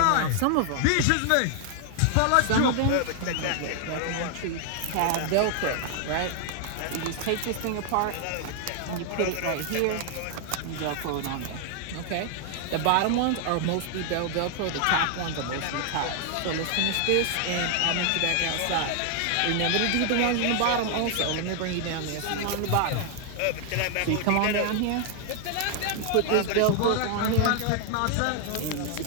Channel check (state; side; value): different; both; correlation 0.00